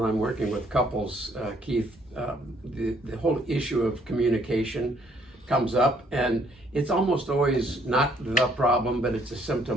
I'm working with couples, Keith, the whole issue of communication comes up, and it's almost always not the problem, but it's a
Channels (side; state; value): both; normal; correlation 0.65